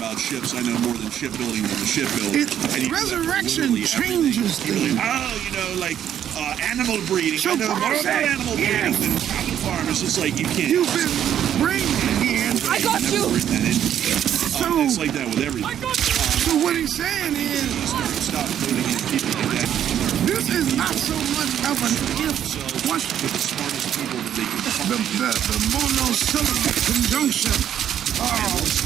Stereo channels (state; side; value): quieter; left; 10.0 dB